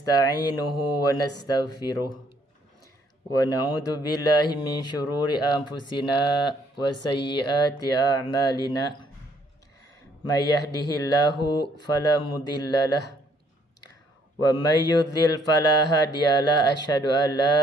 wa nastaghfiruh wa na'udzu billahi min syururi anfusina wa sayyiati a'malina. May yahdihillahu fala mudhillalah wa may yudlil fala hadiyalah. Asyhadu an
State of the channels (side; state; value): both; normal; correlation 0.67